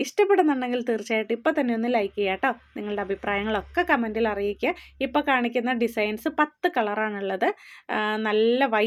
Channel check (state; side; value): identical; both; correlation 1.00